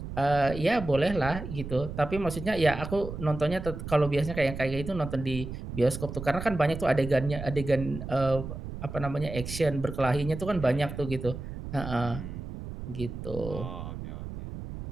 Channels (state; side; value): noise; right; rumble, 8 dB below the sound